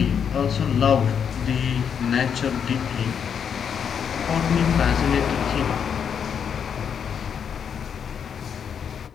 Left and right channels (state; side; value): quieter; right; 7.5 dB